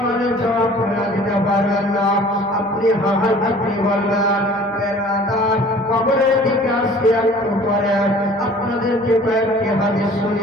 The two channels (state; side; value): noise; right; hum, 28 dB below the sound